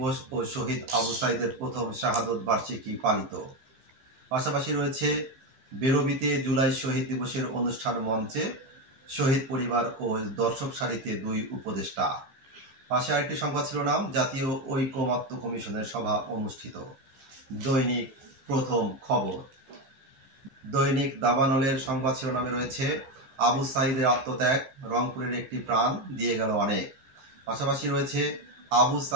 ও শহীদ আবু সাইদের প্রথম শাহাদত বার্ষিকী পালিত। পাশাপাশি রয়েছে বেরবিতে জুলাই শহীদ দিবসের অনুষ্ঠান মঞ্চে শহীদ পরিবার ও দর্শক সারিতে দুই উপদেষ্টা। পাশে আরেকটি সংবাদ শিরোনাম জাতীয় ঐকমত্য কমিশনের সভা অনুষ্ঠিত। দৈনিক প্রথম খবর। দৈনিক দাবানলের সংবাদ শিরোনামে রয়েছে আবু সাইদের আত্মত্যাগ, রংপুরের একটি প্রাণ দিয়ে গেল অনেক। পাশাপাশি রয়েছে আবু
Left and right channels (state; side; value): late; left; 14 ms